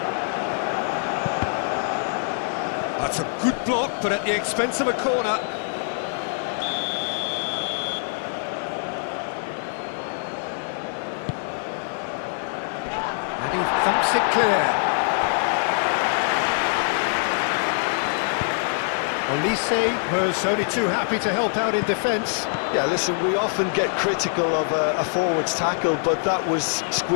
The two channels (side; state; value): right; silent; digital silence